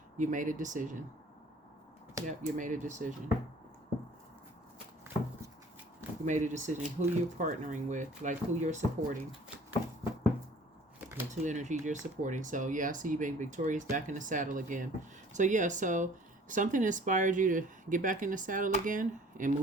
You made a decision. Yep, you made a decision. You made a decision who you're partnering with, like who you're supporting. The two energies you're supporting. So yeah, I see you being victorious, back in the saddle again. So yeah, so something inspired you to get back in the saddle again and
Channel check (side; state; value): both; normal; correlation 0.52